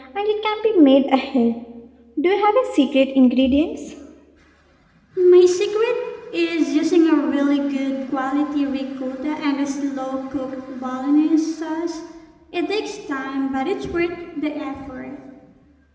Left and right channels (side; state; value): both; identical; correlation 1.00